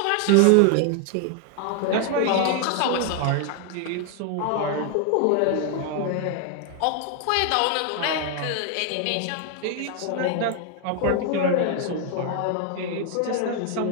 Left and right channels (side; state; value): both; different; correlation 0.00